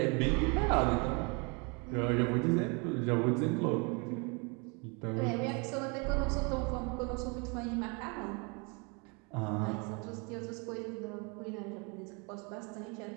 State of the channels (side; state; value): left; quieter; 32.0 dB